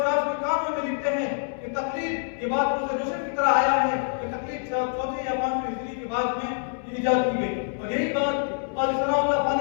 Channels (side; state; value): right; silent; 61 dB below the other